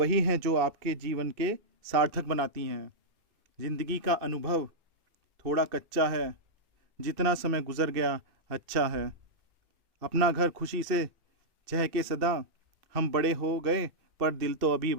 हैं जो आपके जीवन के सार्थक बनाती हैं। जिंदगी का अनुभव थोड़ा कच्चा है, जितना समय गुजर गया अच्छा है। अपना घर खुशी से चहके सदा, हम बड़े हो गए पर दिल तो अभी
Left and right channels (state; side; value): late; left; 2.6 ms